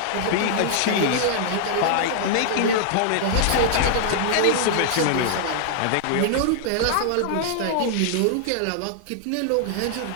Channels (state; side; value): different; both; correlation -0.01